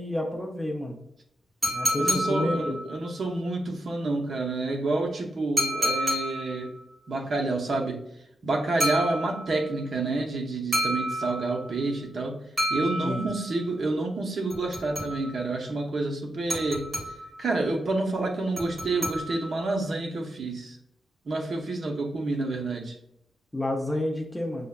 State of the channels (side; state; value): both; normal; correlation 0.85